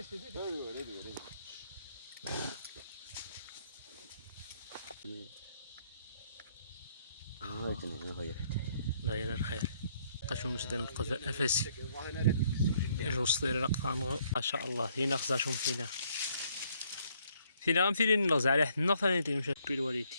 تفرق. داير الخير قشو مسدن القذاء افاسي يجو صدير رقطان ما شاء الله فينا خزاشهم فينا غنمثلين نغز على حد النغ ثاني تيمشي بيل والدي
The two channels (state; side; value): inverted; both; correlation -0.68